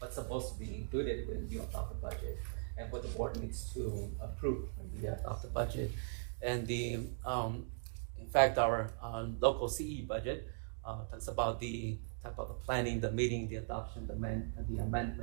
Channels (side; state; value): left; silent; digital silence